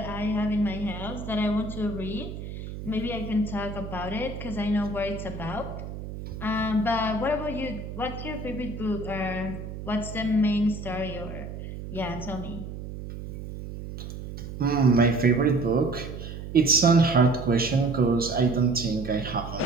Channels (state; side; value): noise; right; hum, 9 dB below the sound